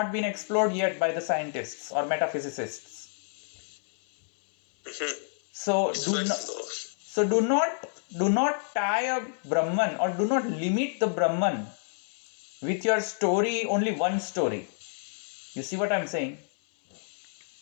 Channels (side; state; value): right; silent; 59 dB below the other